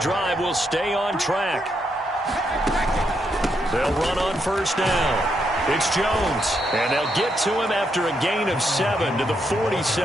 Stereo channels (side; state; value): both; normal; correlation 0.79